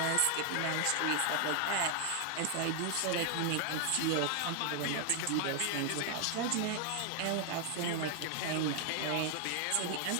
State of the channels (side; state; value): both; different; correlation 0.00